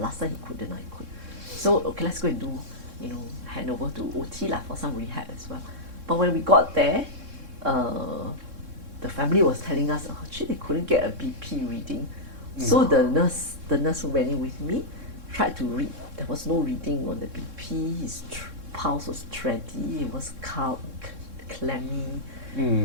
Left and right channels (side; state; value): left; late; 3.6 ms